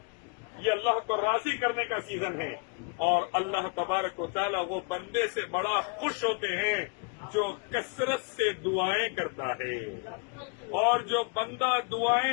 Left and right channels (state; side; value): quieter; right; 33.6 dB